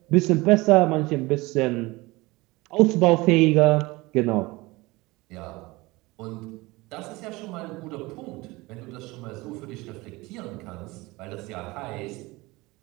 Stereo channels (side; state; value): left; quieter; 22.0 dB